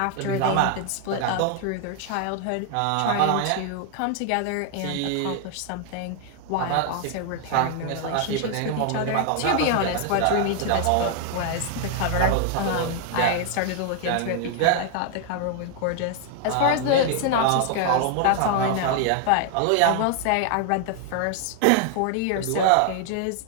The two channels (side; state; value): both; different; correlation 0.00